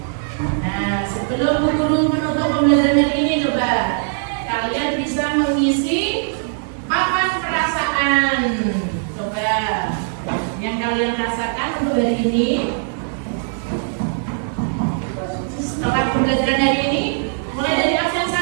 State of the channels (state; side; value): silent; left; 66 dB below the other